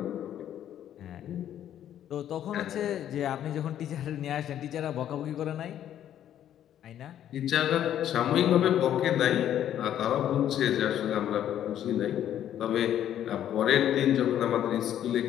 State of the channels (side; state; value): right; quieter; 10.8 dB